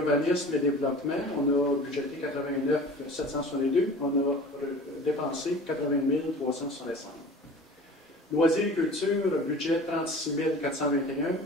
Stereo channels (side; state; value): both; normal; correlation 0.42